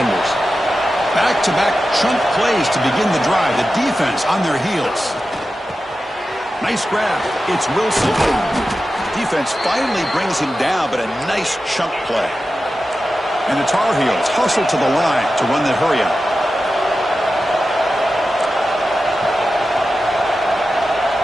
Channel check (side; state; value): both; normal; correlation 0.92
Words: Back-to-back chunk plays to begin the drive. The defense on their heels. Nice grab. It's Wilson. Defense finally brings him down, but a nice chunk play. And the Tar Heels hustle to the line to run the hurry-up.